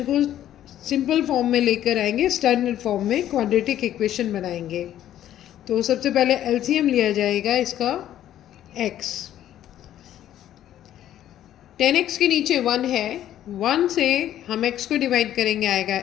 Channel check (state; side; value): quieter; right; 11.8 dB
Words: को सिंपल फॉर्म में लेकर आएंगे, स्टैंडर्ड फॉर्म में क्वाड्रेटिक इक्वेशन बनाएंगे। तो सबसे पहले एलसीएम लिया जाएगा इसका x। 10x के नीचे 1 है, 1 से हम x को डिवाइड करेंगे, आएगा